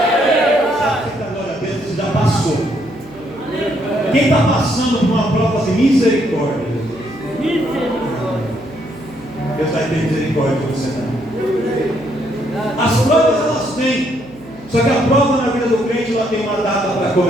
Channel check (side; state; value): right; noise; hum, 22 dB below the sound